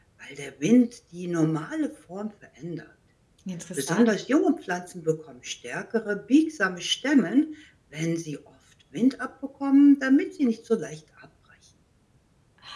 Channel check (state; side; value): identical; both; correlation 1.00